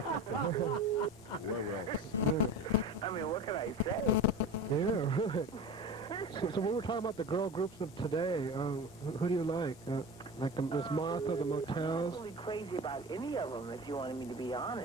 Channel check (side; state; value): both; normal; correlation 0.32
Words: I mean, what can I say? Yeah, right. So we were talking about the girl groups of today. Who do you like? Like the Miss Martha, the Motels? I'm really crazy about any of them, if you wanted me to be